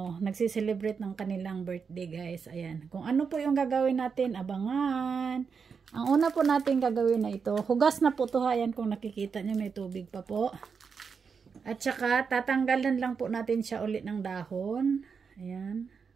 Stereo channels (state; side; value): quieter; left; 5.8 dB